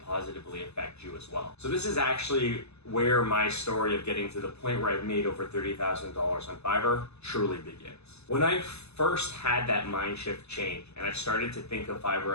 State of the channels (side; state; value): right; late; 0.80 ms